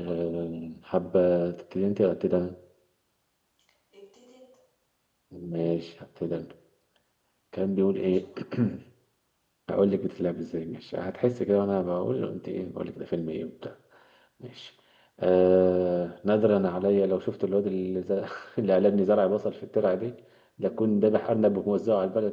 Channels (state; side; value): identical; both; correlation 1.00